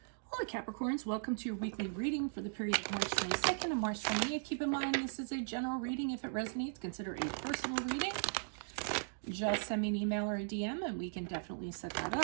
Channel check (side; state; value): left; silent; digital silence